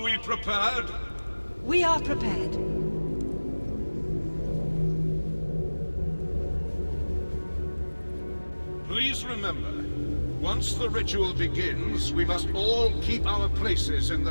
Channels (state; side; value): inverted; both; correlation -1.00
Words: we prepared? We are prepared. Please remember, once the ritual begins, we must all keep our places in